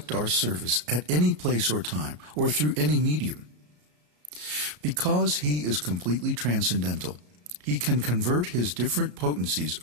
our service at any place or time, or through any medium. Because he is completely transcendental, he can convert his different potencies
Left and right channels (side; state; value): left; late; 34 ms